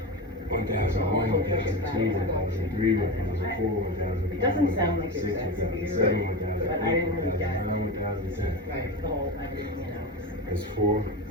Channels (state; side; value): normal; both; correlation 0.22